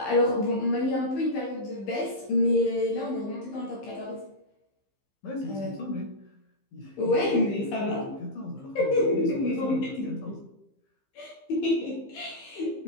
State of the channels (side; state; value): right; late; 15 ms